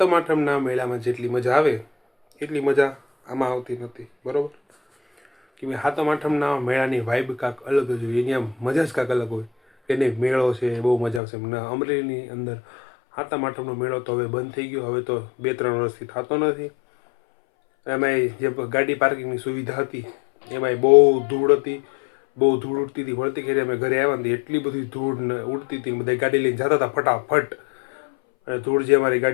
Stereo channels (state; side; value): drops out; right; at 11.2 s